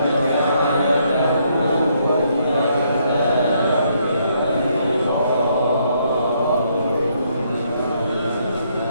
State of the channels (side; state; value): both; inverted; correlation -0.72